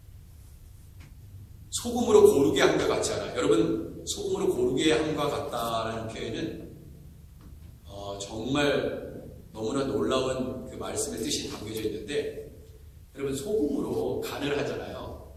소금으로 고르게 한 것 같지 않아요? 여러분, 소금으로 고르게 한 것 같다라는 표현은 정말 너무나 놀라운 그 말씀의 뜻이 담겨져 있는데, 여러분, 소금으로 간을 하잖아요.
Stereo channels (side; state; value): both; identical; correlation 1.00